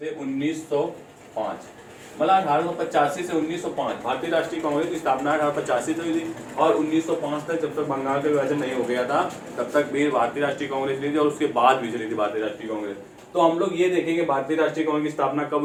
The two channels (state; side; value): identical; both; correlation 1.00